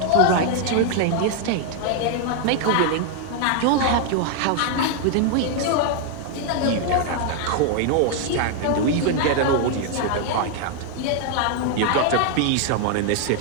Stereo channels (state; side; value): different; both; correlation 0.00